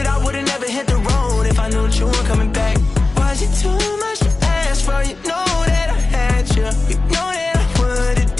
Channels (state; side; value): quieter; right; 3.4 dB